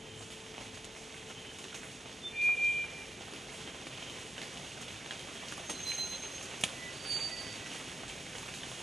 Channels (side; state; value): both; normal; correlation 0.87